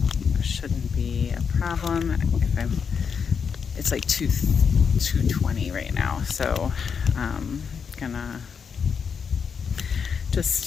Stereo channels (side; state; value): right; quieter; 6.4 dB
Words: it shouldn't be a problem. It's like 2:20 right now, so I'm gonna